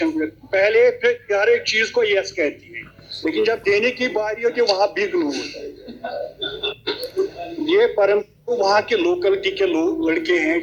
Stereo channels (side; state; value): both; identical; correlation 1.00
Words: पहले फिर हर एक चीज को यस कहती है, लेकिन जब देने की बारी होती है वहां बिग नो होता है। ये परम वहाँ के लोकलिटी के लोग लड़के हैं,